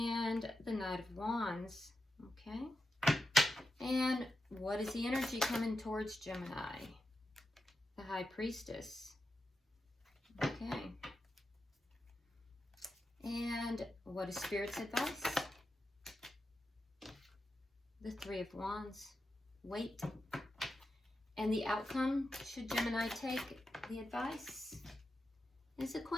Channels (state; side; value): normal; both; correlation 0.88